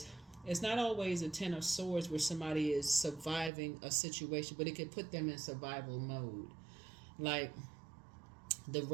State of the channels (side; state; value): left; drops out; at 3.5 s